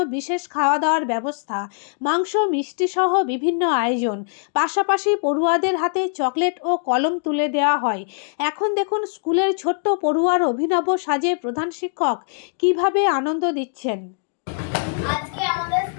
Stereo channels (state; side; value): silent; right; digital silence